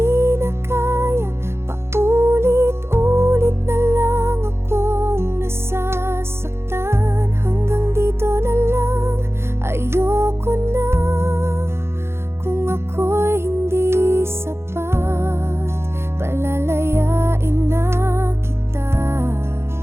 na kaya, paulit-ulit na lang akong nasasaktan. Hanggang dito na lang, ayoko na. Kung ako'y hindi sapat, palalayain na kita,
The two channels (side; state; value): left; late; 0.12 ms